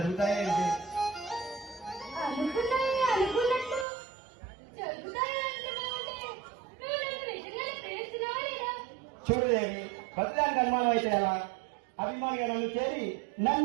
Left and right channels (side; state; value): left; drops out; at 3.9 s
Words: ఏంటి? చూడు దేవి, ప్రతిదానికి అనుమానం అయితే ఎలా? అభిమానిగా నన్ను చేరి